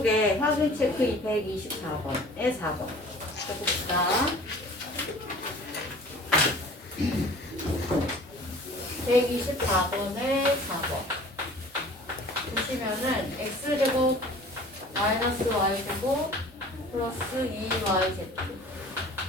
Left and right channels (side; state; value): both; normal; correlation 0.46